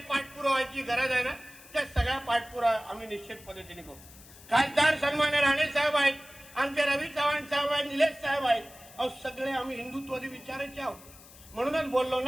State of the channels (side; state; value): left; noise; hiss, 21 dB below the sound